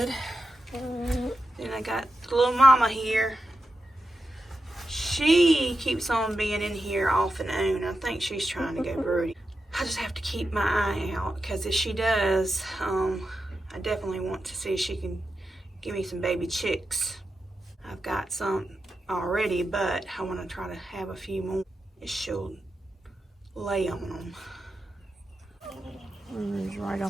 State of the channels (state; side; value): normal; both; correlation 0.89